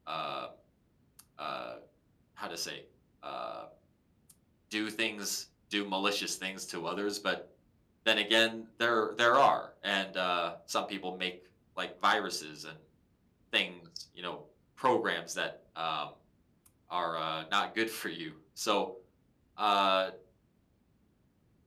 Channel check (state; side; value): identical; both; correlation 1.00